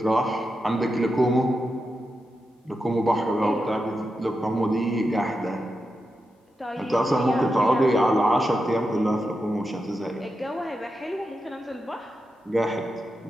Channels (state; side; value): normal; both; correlation 0.88